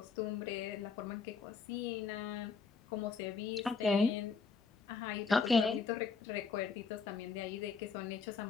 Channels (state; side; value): quieter; right; 5.1 dB